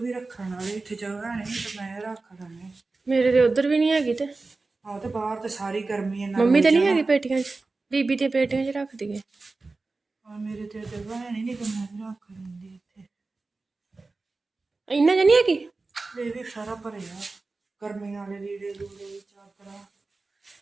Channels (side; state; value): left; quieter; 3.6 dB